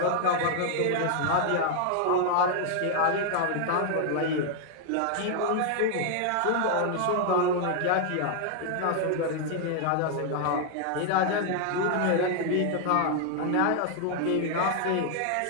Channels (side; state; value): both; different; correlation 0.00